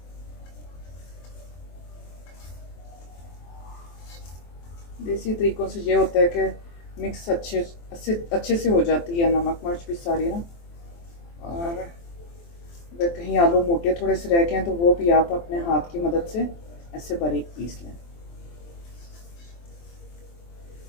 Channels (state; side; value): late; right; 23 ms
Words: देसी तरीक़ों से ये होता है कि मिक्स अच्छे से हो जाती है नमक मिर्च भी सारी ना। और अगर कहीं आलू मोटे थोड़े से रह गए हैं तो वो भी आप अपने हाथ की मदद से ऐसे बारीक पीस लें।